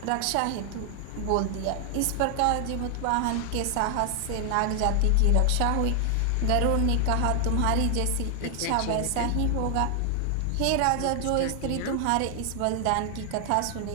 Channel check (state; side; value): different; both; correlation 0.00